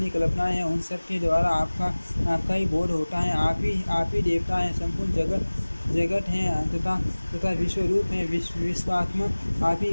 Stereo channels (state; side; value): inverted; both; correlation -1.00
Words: कल्पनाएं हैं उन सब के द्वारा आपका ही बोध होता है। आप ही देवता हैं। संपूर्ण जगत हैं तथा विश्वरूप हैं। विश्वात्मक